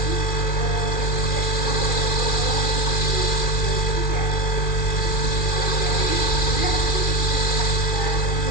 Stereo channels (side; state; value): right; late; 2.4 ms